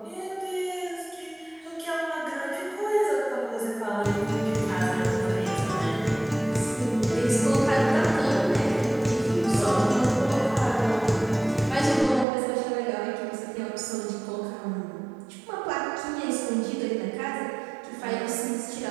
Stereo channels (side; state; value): left; drops out; at 12.2 s